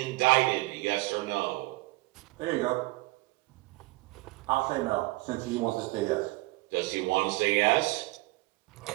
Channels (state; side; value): quieter; left; 21.4 dB